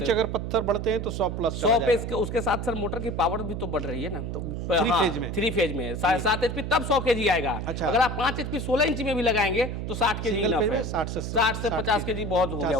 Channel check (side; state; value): right; noise; hum, 4 dB below the sound